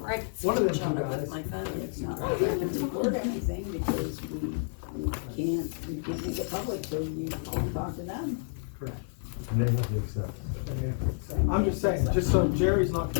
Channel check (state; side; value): silent; right; digital silence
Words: of them two guys. It's not like I can report anything because we can't make it public, so you can talk to them. Correct. And they have to accept. I'm just saying, just so Jerry's not